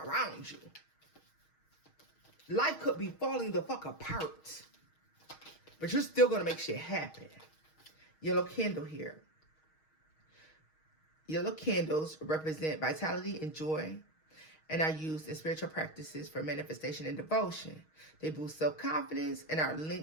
you. Life could be falling the fuck apart. But you're still going to make shit happen. Yellow candle here. Yellow candles represent vitality and joy and are used in spiritual practices for manifestation and devotion. They boost self-confidence and are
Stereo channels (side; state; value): right; late; 6.4 ms